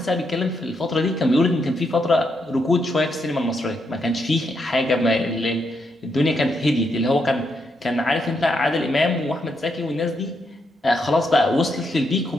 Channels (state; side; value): normal; both; correlation 0.80